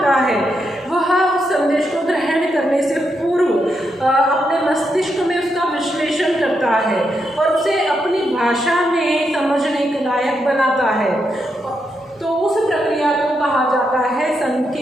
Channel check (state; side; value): normal; both; correlation 0.82